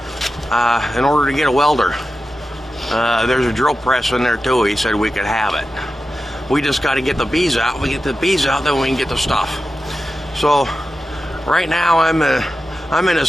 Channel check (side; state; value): both; normal; correlation 0.92